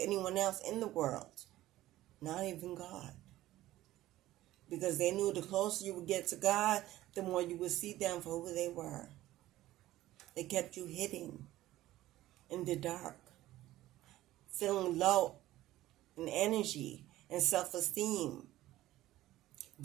else in the world. Not even God. Because they knew the closer you would get to God, the more you would see them for who they were. They kept you hidden in the dark, feeling low in energy and self-esteem,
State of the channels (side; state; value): left; quieter; 15.5 dB